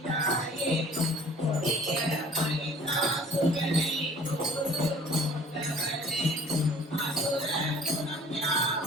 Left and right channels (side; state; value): both; normal; correlation 0.51